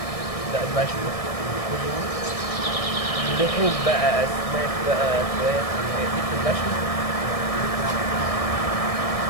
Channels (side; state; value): right; late; 1.6 ms